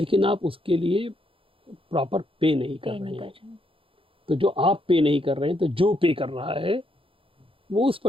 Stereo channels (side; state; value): left; late; 0.26 ms